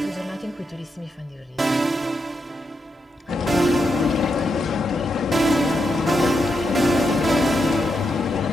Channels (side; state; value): both; normal; correlation 0.83